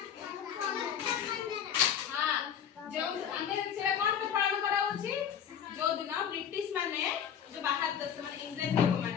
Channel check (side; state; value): right; quieter; 8.6 dB